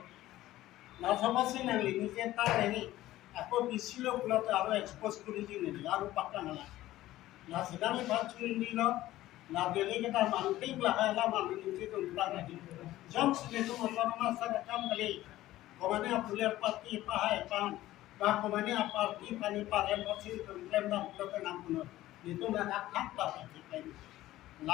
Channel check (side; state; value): right; quieter; 15.5 dB